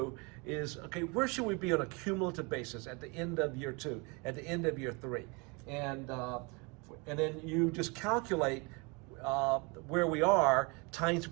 is, okay, where should we be on a cumulative basis at the end of year 2, at the end of year 3? And then you just calculate where we are times the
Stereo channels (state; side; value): quieter; left; 29.6 dB